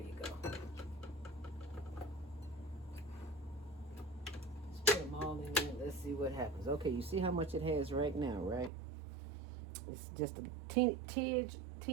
you go. Just put them all in there. Let's see what happens. Okay, you see how much it has right now, right? It's just a teeny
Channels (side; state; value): left; drops out; at 8.7 s